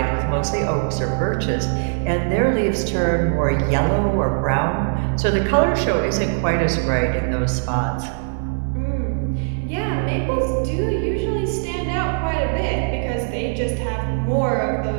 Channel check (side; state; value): left; silent; 62 dB below the other